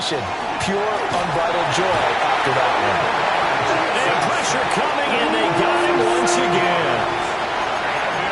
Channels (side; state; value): both; identical; correlation 1.00